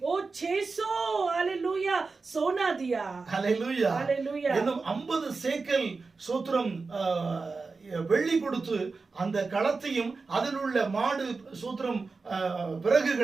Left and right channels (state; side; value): quieter; left; 4.2 dB